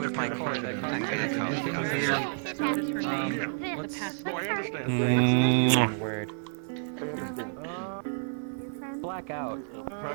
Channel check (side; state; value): left; silent; 58 dB below the other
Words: my car that causes me word. Blackout for